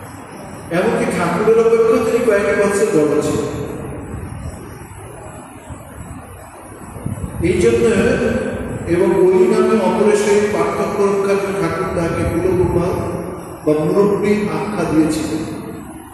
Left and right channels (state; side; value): identical; both; correlation 1.00